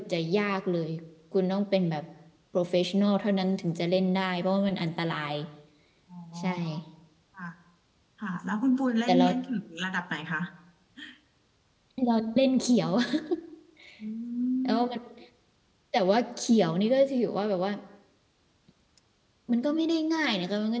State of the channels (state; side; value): identical; both; correlation 1.00